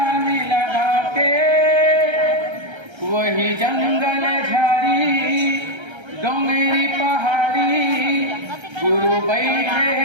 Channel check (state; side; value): late; left; 1.3 ms